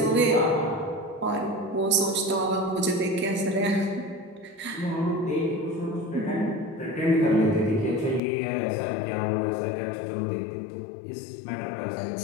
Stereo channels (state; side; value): drops out; right; at 8.2 s